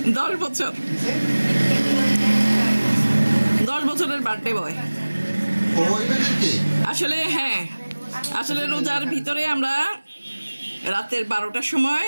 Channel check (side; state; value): both; inverted; correlation -1.00